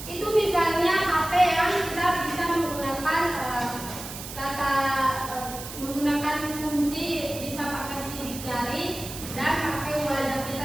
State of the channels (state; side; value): noise; right; hiss, 10 dB below the sound